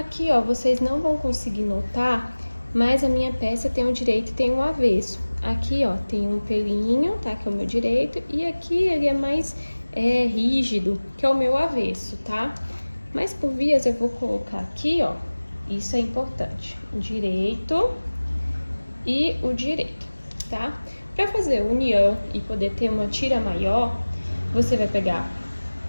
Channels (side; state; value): both; inverted; correlation -1.00